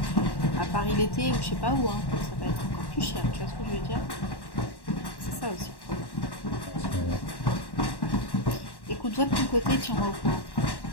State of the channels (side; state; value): right; late; 1.1 ms